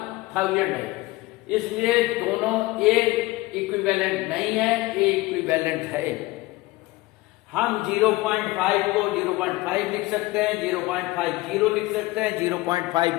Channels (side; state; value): right; quieter; 20.0 dB